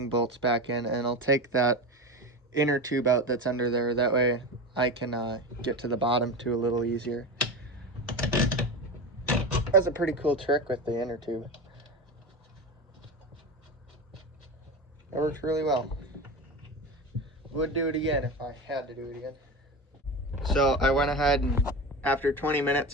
bolts back in, and I'll take that inner tube out that's under there. That way I can get to the bottom too a little easier. That's a pretty cool trick with the inner tube. It works really well. Would do it again if I had to do it again. So I went ahead and after 20 minutes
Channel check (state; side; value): normal; both; correlation 0.24